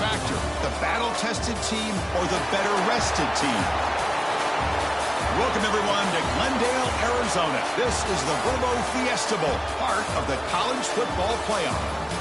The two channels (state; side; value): identical; both; correlation 1.00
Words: the battle-tested team or the better-rested team? Welcome, everyone, to Glendale, Arizona. This is the Verbo Fiesta Bowl, part of the college football playoff,